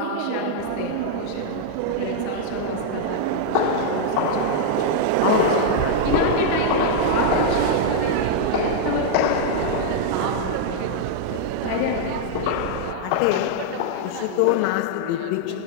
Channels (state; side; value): different; both; correlation -0.01